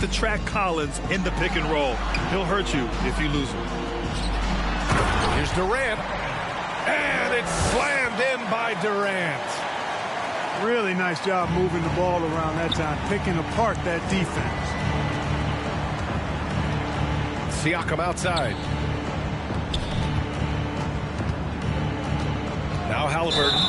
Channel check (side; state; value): both; identical; correlation 1.00